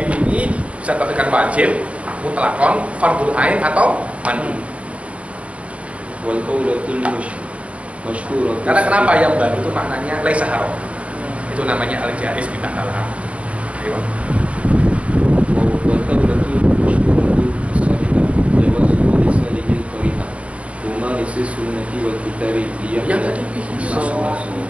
ini bisa terkatakan wajib, mutlakon, fardul ain atau mandi. Wal qaulatul masyhurah. Karena kenapa yang bagi itu maknanya laisa haram. Itu namanya al-jaiz bid'ah al-haram. Ayo. Wal qaulatul masyhurah as-sahihah jawazu lisanil qari'ah. Huma lisis sunnati wal kitabi yang tadi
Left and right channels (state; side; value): late; left; 0.063 ms